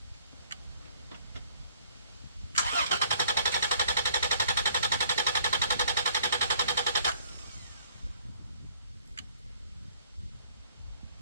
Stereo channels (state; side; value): inverted; both; correlation -0.60